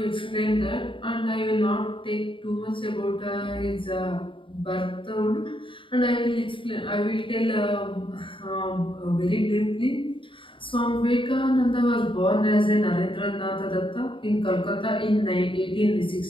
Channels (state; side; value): late; right; 0.25 ms